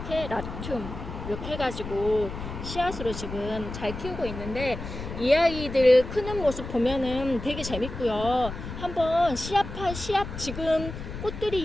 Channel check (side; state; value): left; noise; rumble, 9 dB below the sound